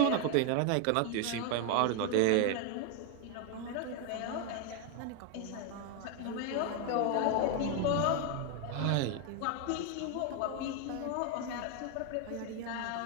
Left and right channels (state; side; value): different; both; correlation 0.01